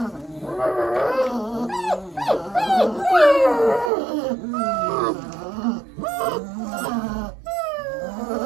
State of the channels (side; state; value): left; drops out; at 3.9 s